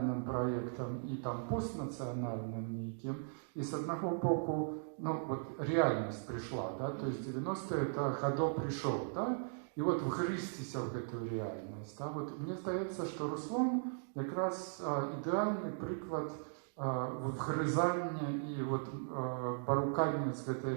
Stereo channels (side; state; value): left; silent; digital silence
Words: проєктом і там постнаціональним неким. І з одного боку, ну, вот реальність прийшла, да, то есть 90-е это Годо прийшов, да, і от вгризтися в эту реальність. Да. Вот мені здається, що Руслан якраз ідеальний приклад вгризання і от, порукання з этой